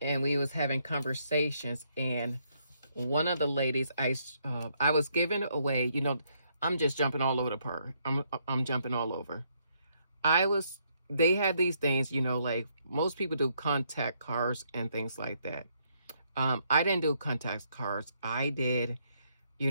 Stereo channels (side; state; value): both; inverted; correlation -0.73